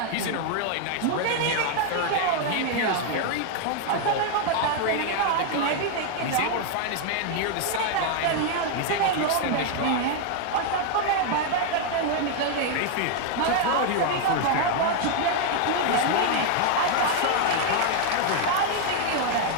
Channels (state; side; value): different; both; correlation 0.00